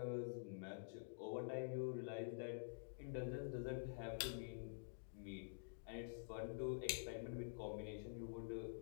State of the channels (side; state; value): right; silent; digital silence